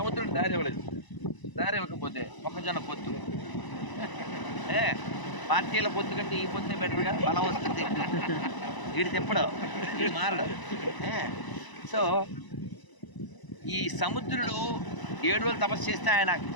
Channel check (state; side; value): late; right; 1.0 ms